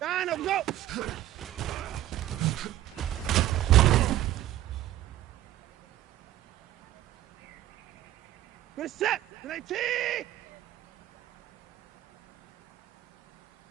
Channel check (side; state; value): left; quieter; 13.7 dB